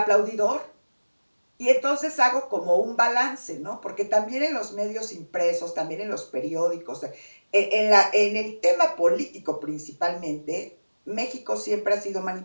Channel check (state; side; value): inverted; both; correlation -1.00